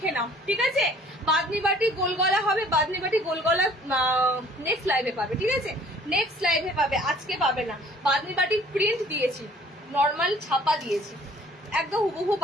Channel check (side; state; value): both; normal; correlation 0.54